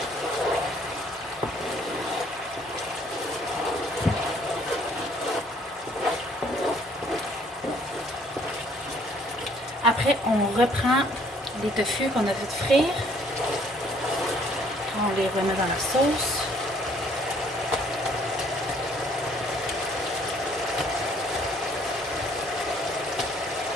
Après, on reprend les tofu qu'on a fait frire. On les remet dans la sauce.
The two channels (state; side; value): normal; both; correlation 0.61